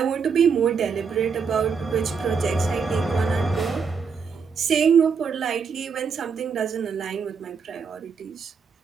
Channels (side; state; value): left; quieter; 5.8 dB